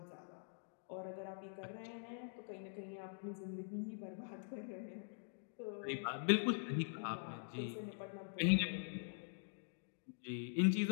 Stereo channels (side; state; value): right; silent; digital silence